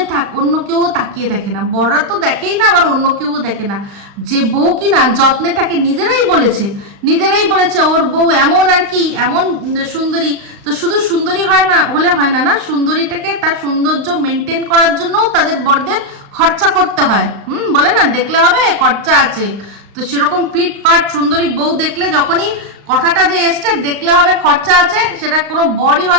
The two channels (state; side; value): late; left; 36 ms